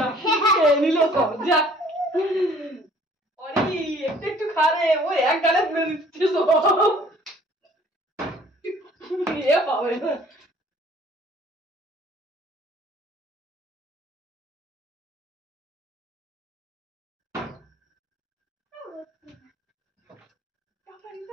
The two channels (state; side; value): normal; both; correlation 0.55